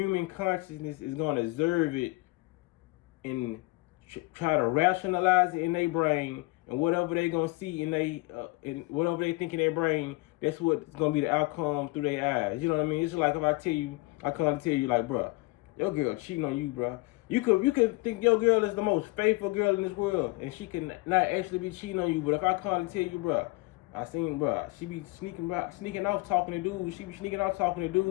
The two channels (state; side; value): quieter; right; 23.1 dB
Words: consciousness is going to observe it and try to rationalize it in their brain, and whatever they going to see in whatever they think in their brain, that's what's going to be the outcome through their eyes. You know what I mean? It's like if I come to tell you like, bruh, your girl cheating on you, bruh. You could think your girl is the most faithful girl in this world, and she can not actually be cheating on you. But if I come to tell you, bruh, I seen, bruh, she be sneaking off talking to dudes. She be sneaking off talking to